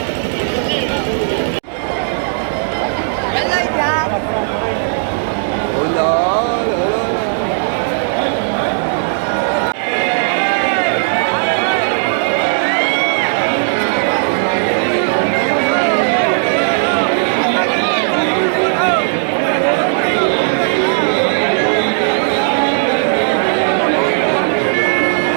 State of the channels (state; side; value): silent; left; digital silence